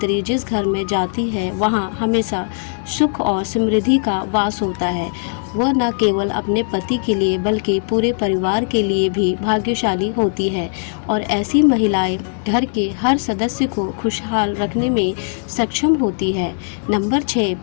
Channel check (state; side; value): silent; right; digital silence